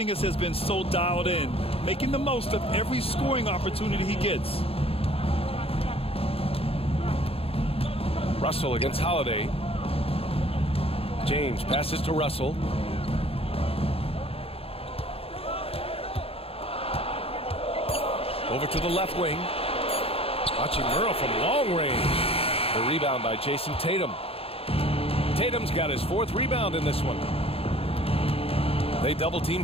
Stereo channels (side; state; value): right; late; 0.28 ms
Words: has been so dialed in, making the most of every scoring opportunity he gets. Russell against Holiday. James passes to Russell. Over to the left wing. Hachimura from long range. The rebound by Jason Tatum. Tatum's got his 4th rebound in this one. They double team